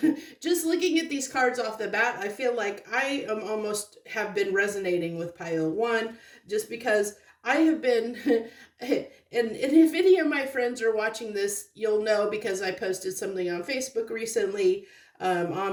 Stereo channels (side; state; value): both; identical; correlation 1.00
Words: just looking at these cards off the bat, I feel like I am almost have been resonating with pile 1 just because I have been, and if any of my friends are watching this, you'll know because I posted something on Facebook recently,